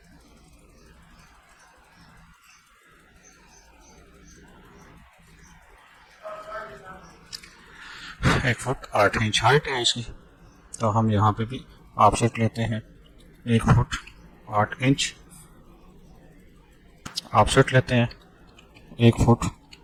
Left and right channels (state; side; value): identical; both; correlation 1.00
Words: 1 foot 8 inch height है इसकी। तो हम यहाँ पे भी ऑफसेट लेते हैं 1 फुट 8 इंच, ऑफसेट लेते हैं 1 फुट